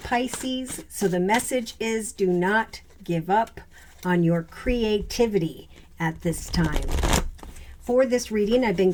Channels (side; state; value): both; identical; correlation 1.00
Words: so the message is do not give up on your creativity at this time. For this reading, I've been